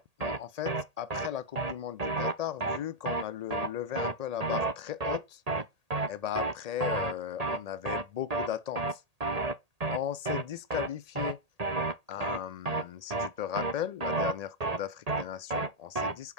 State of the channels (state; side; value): late; left; 1.8 ms